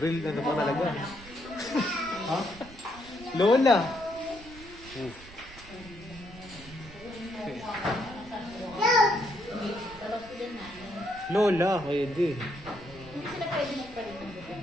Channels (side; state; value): right; noise; rumble, 19 dB below the sound